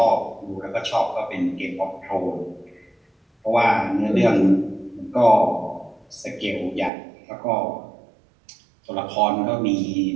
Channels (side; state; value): left; drops out; at 6.9 s